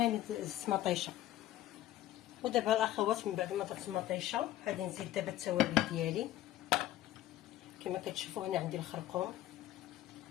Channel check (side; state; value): right; quieter; 14.1 dB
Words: زدت مطيشه. ودابا الاخوات من بعد ما درت المطيشه غادي نزيد دابا التوابل ديالي. كما كتشوفوا هنا عندي الخرقوم